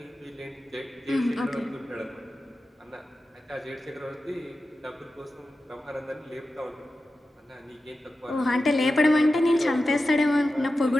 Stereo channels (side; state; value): both; normal; correlation 0.92